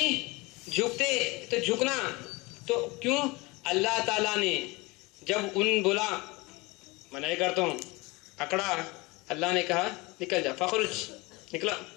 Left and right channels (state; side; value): quieter; right; 24.3 dB